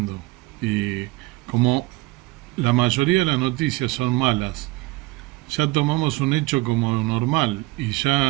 Y como la mayoría de las noticias son malas, ya tomamos un hecho como normal, y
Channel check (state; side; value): quieter; left; 21.3 dB